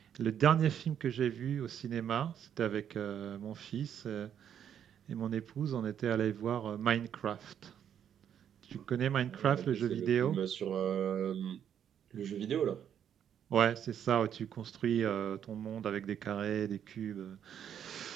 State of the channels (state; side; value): quieter; left; 9.1 dB